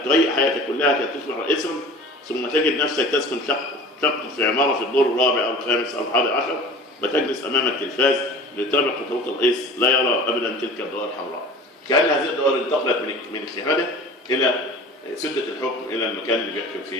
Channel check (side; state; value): both; normal; correlation 0.40